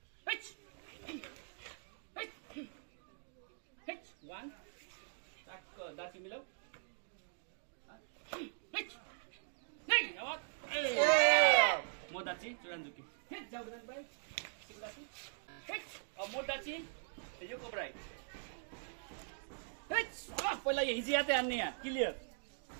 वान टक्क दाची मिलाऊ म दाची चुरानजुकी जाऊ भाइ सिको दाची अब म दाची यो कोब्राई पहिला यो हिजियाते हान्ने यहाँ क्लियर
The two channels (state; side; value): silent; left; digital silence